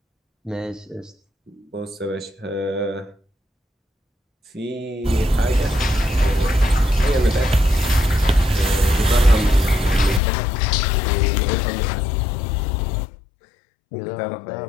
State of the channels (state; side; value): drops out; right; at 10.2 s